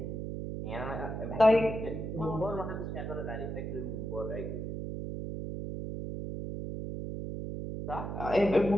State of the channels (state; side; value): noise; right; hum, 5 dB below the sound